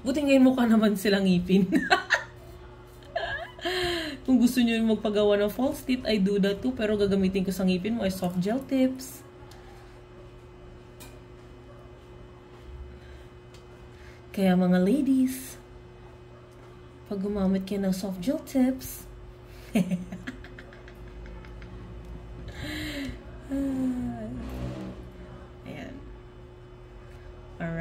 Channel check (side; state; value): both; identical; correlation 1.00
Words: ngayon mukha naman silang ngipin. Kung gusto nyo magpagawa ng false teeth, I do that too. Pero gagamitin ko sa ngipin mo ay soft gel tips. Kaya mga ladies, pag gumamit kayo ng soft gel tips, ayan.